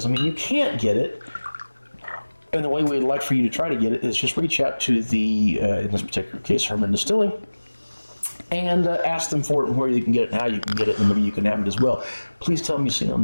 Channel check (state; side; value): inverted; both; correlation -1.00